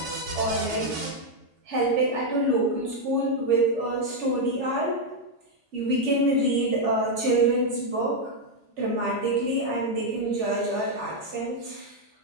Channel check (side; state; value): both; normal; correlation 0.00